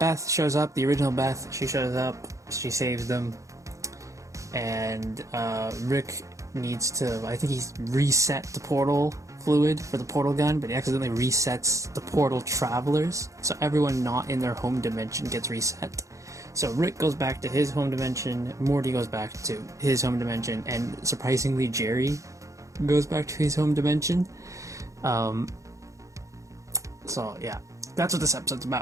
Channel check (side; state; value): left; late; 0.15 ms